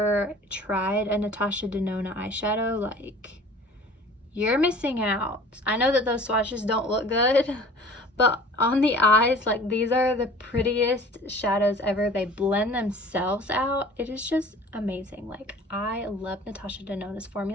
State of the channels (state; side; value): normal; both; correlation 0.46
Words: tried a Natasha Denona eyeshadow, like, you're missing out. I know that those swatches don't look good, but on the eyes, like, these are the prettiest shadows ever. They blend themselves out. It is just amazing. Like, I love Natasha Denona's